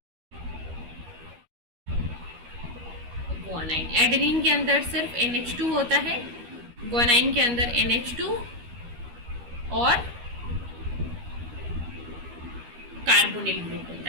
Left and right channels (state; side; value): late; left; 13 ms